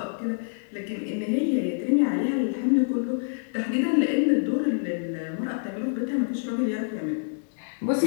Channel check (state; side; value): silent; right; 61 dB below the other